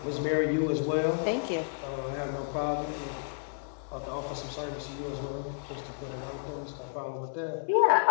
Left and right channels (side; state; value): right; silent; 57 dB below the other